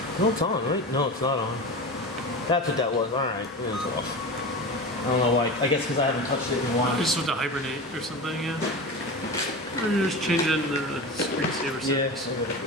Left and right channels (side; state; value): both; normal; correlation 0.28